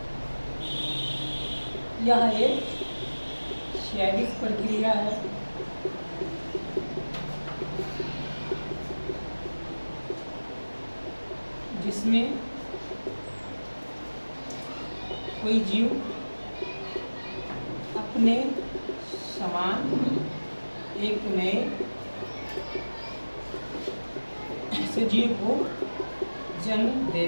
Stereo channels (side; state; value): both; inverted; correlation -1.00